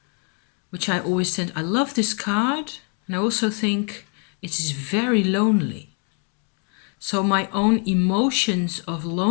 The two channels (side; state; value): right; quieter; 39.6 dB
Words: which I always tend, I love this card, and I also think it is very lonely. So my own emotions of